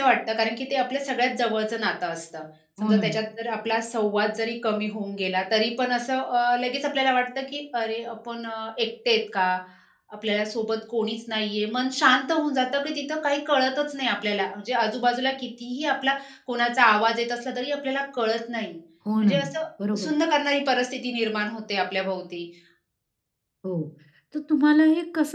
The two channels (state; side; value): identical; both; correlation 1.00